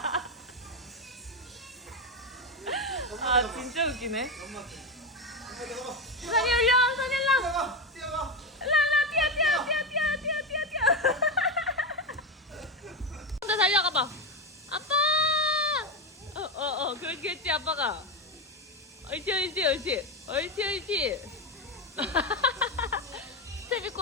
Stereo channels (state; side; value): normal; both; correlation 0.14